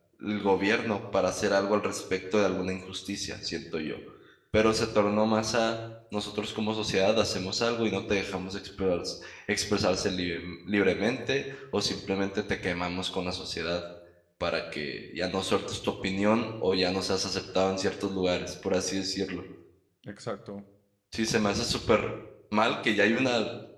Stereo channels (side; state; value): both; identical; correlation 1.00